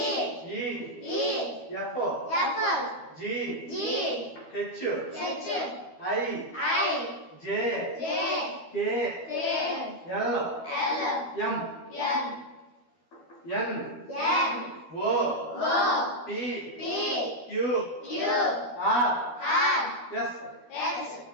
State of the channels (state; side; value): late; right; 12 ms